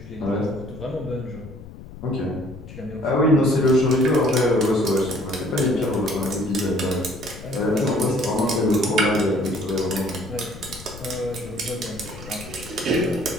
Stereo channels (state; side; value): noise; left; rumble, 15 dB below the sound